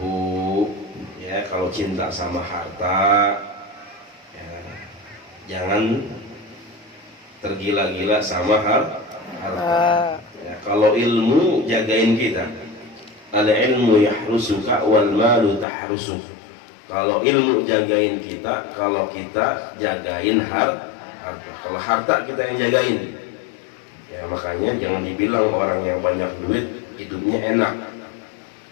Ya, kalau cinta sama harta, ya, jangan tergila-gila sama harta. Ya, kalau ilmu jagain kita, al ilmu yahrusuka wal malu tahrusuk. Kalau ilmu jagain kita, kalau kita jagain harta. harta. Kalau harta kita yang jagain, ya makanya jangan dibilang orang yang banyak duit hidupnya enak,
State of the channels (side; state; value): right; drops out; at 15.7 s